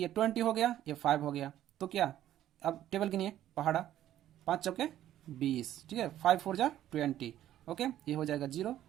20 हो गया, ये 5 हो गया, तो क्या अब टेबल गिनिए, पहाड़ा 5 चौके 20। ठीक है, 5 4 जा 20। ओके, ये हो जाएगा 0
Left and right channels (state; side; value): quieter; left; 12.4 dB